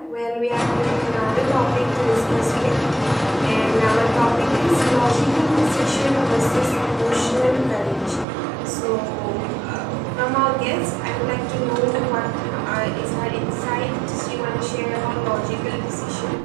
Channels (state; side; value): drops out; left; at 8.2 s